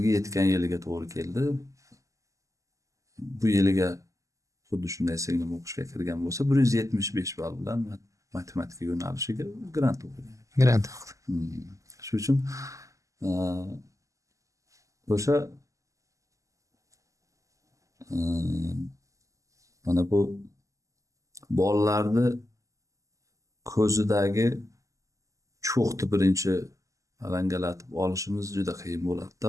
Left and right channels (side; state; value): left; late; 0.16 ms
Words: yetgan yiliga to'g'ri keldi. Bu yiliga xuddi shunday singlim o'qishga kirgan bo'lsa 175 ball bilan matematika yo'nalishiga grant o'qigan. Grant. Shuning uchun o'sha mana bu bolalarni ko'zidagi cho'qni birinchi alangalatib olishimiz juda qiyin bo'ladi-da